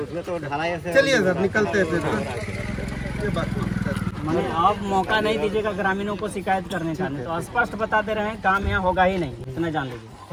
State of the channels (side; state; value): both; identical; correlation 1.00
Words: चलिए सर निकलते हैं फिर। ये बात मैंने अब मौका नहीं दीजिएगा ग्रामीणों को शिकायत करने का, नहीं तो स्पष्ट बता दे रहे हैं काम यहाँ होगा ही नहीं, इतना जान लीजिए।